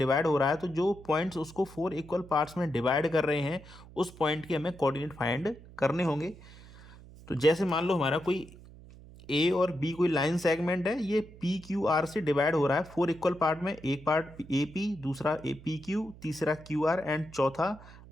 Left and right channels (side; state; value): right; noise; hum, 19 dB below the sound